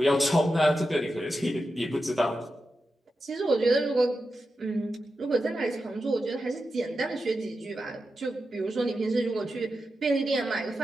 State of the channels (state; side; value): normal; both; correlation 0.90